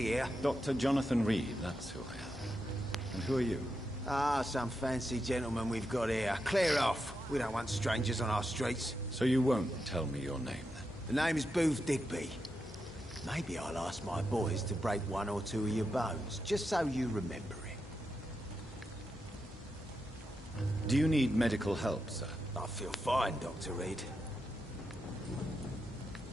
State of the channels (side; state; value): both; normal; correlation 0.86